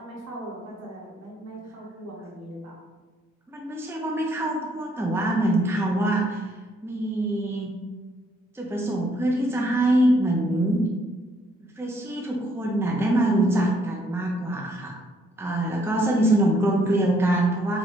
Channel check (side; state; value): both; normal; correlation 0.68